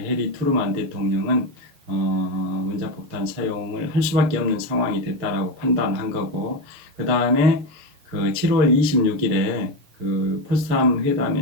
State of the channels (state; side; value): late; left; 7.0 ms